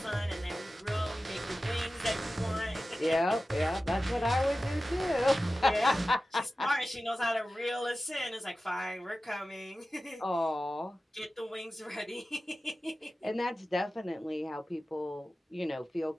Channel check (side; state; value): both; normal; correlation 0.95